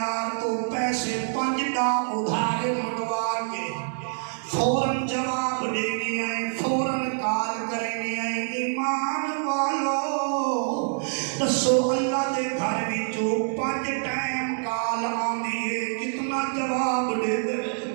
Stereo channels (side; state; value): left; silent; digital silence